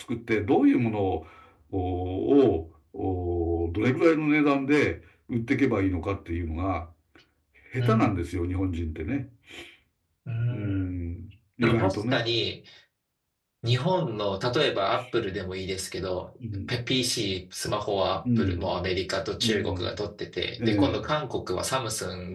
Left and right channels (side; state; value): both; identical; correlation 1.00